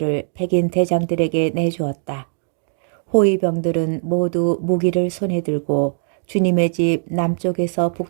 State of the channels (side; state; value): left; silent; digital silence